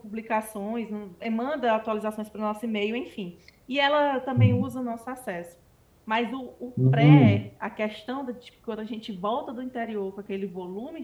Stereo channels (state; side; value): identical; both; correlation 1.00